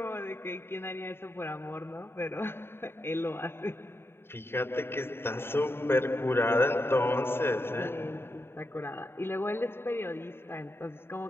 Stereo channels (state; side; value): late; right; 0.11 ms